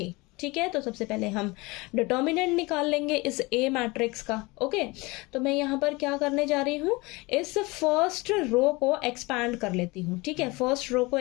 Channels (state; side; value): quieter; right; 24.1 dB